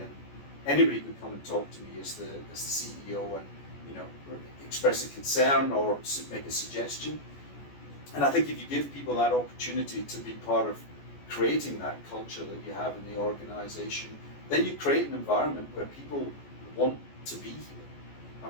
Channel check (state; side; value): late; right; 14 ms